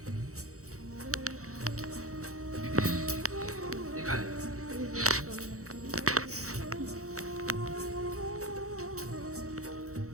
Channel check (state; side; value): late; left; 0.65 ms